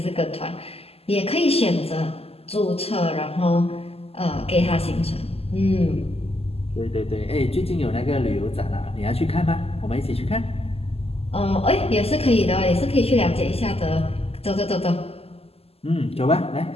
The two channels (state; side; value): late; right; 0.29 ms